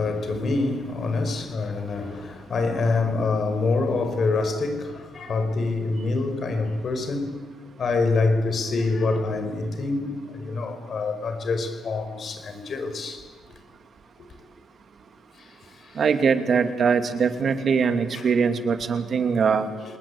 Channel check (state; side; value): normal; both; correlation 0.80